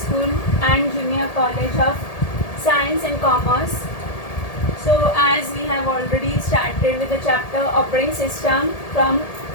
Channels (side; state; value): right; late; 1.8 ms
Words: and Junior College of Science and Commerce. So as we have already started with the chapter Operating System from